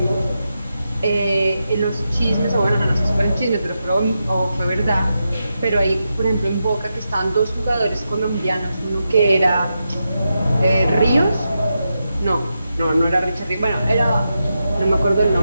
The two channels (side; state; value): both; inverted; correlation -0.87